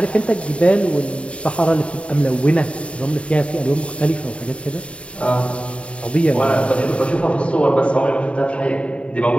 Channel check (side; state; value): right; late; 0.061 ms